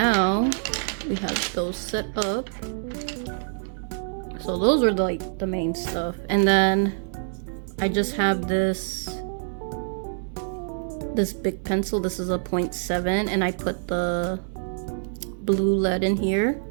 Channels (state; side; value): silent; left; 61 dB below the other